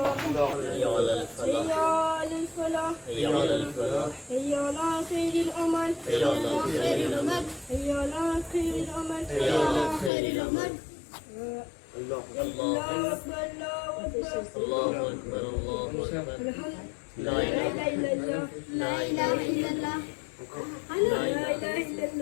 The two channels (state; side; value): drops out; right; at 10.1 s